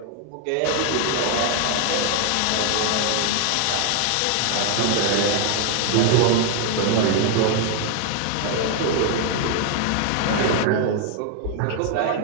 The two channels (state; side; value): different; both; correlation 0.00